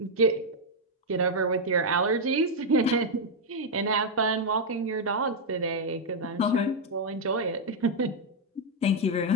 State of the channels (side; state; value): both; normal; correlation -0.01